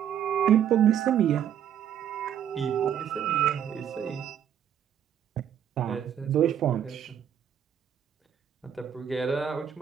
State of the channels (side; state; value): left; quieter; 9.3 dB